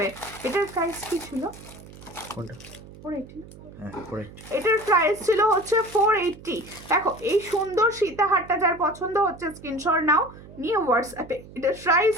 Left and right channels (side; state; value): right; noise; hum, 18 dB below the sound